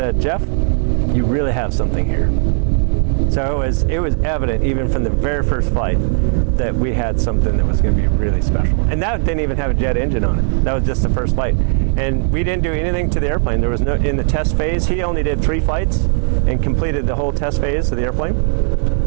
"Jeff, you really have something here." So it was evident even from the very first flight that we had something that was going to be really special. And that didn't even have a jet engine on it. That was just the first flight. And we didn't do anything to the airplane. There was no, in the test phase, he only did 3 flights and completed the whole test phase of the airplane.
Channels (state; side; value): silent; left; 65 dB below the other